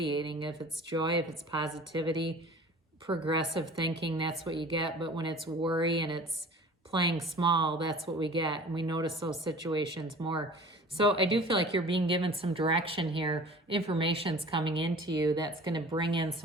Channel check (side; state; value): both; normal; correlation 0.44